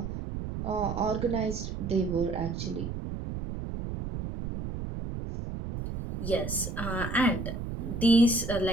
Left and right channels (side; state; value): right; noise; rumble, 5 dB below the sound